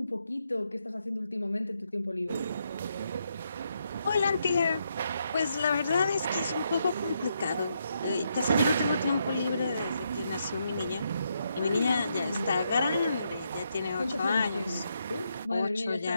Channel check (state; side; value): inverted; both; correlation -0.79